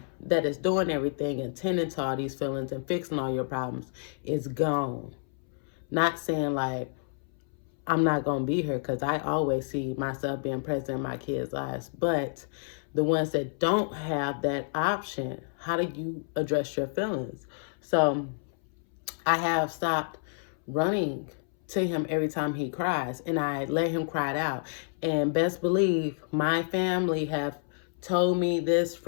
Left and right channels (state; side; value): silent; right; 58 dB below the other